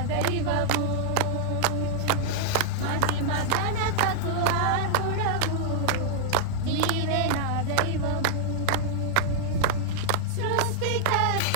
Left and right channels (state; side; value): different; both; correlation -0.01